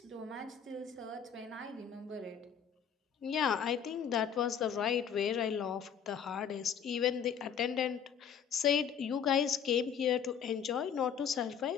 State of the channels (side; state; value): right; quieter; 7.7 dB